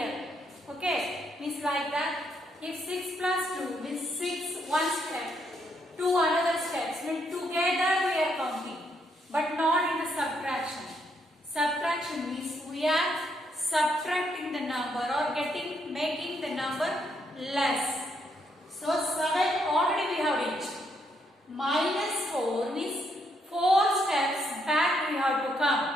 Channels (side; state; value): both; normal; correlation 0.75